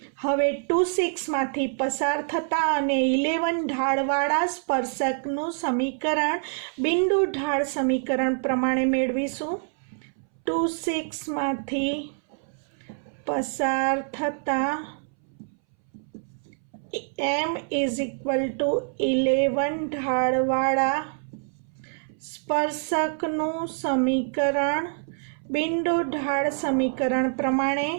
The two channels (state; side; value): silent; left; 61 dB below the other